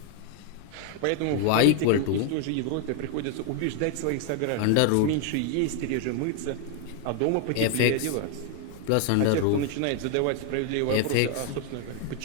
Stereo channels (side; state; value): both; different; correlation 0.01